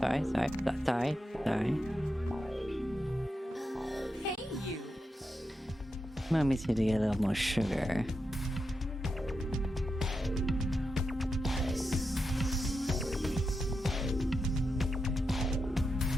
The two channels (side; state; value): both; normal; correlation 0.87